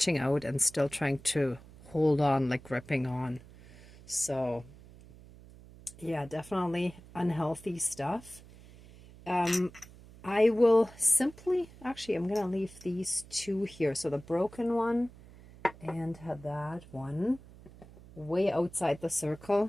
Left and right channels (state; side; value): noise; right; hum, 21 dB below the sound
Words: out and still trying to hold on, like gripping on. So, yeah, definitely unhealthy stuff. I will simply, actually, I'm going to leave these two here. So the broken one and that one way outside the